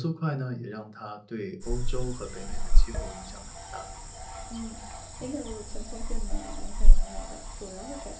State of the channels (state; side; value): identical; both; correlation 1.00